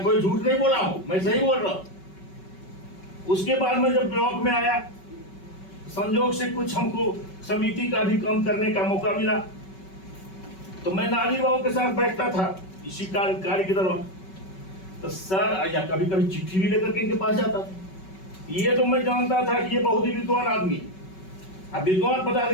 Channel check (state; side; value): late; right; 5.3 ms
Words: कोई झूठ नहीं बोला हूँ, मैं सही बोल रहा हूँ। उसके बाद में जब ब्लॉक में आया, संजोग से कुछ हमको समिति का भी काम करने का मौका मिला, तो मैं नाजिर बाबू के साथ बैठता था इसी कार्य के दौरान। तो सर या कभी कभी चिट्ठी भी लेकर के इनके पास जाता था। ये तो मैं जानता था कि ये बहुत ही विद्वान आदमी। अब विद्वान